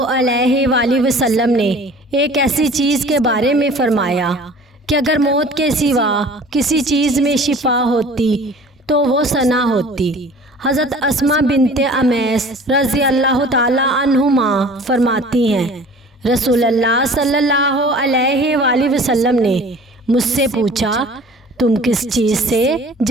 علیہ وآلہ وسلم نے ایک ایسی چیز کے بارے میں فرمایا کہ اگر موت کے سوا کسی چیز میں شفا ہوتی تو وہ ثنا ہوتی۔ حضرت اسماء بنت امیس رضی اللہ تعالی عنہما فرماتی ہیں، رسول اللہ صلی اللہ علیہ وآلہ وسلم نے مجھ سے پوچھا، تم کس چیز سے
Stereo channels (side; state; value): both; normal; correlation 0.46